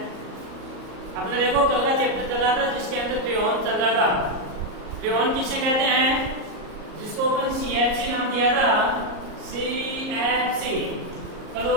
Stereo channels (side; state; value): left; late; 38 ms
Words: अपने देखो कल का चैप्टर चला था जिसके अंदर फ्रेऑन चल रहा था। फ्रेऑन किसे कहते हैं? जिसको अपन CFC नाम दिया था, CFC